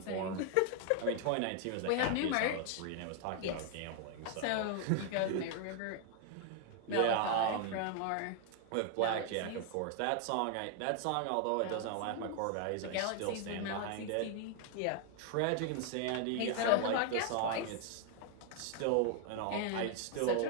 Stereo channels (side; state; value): both; different; correlation 0.00